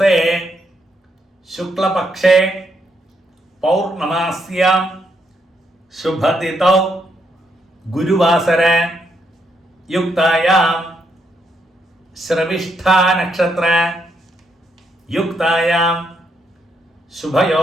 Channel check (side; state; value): both; normal; correlation 0.77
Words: ശുക്ലപക്ഷേ പൗർണമാസ്യാം ശുഭതിഥൗ ഗുരുവാസര യുക്തായാം ശ്രവിഷ്ഠാ നക്ഷത്ര യുക്തായാം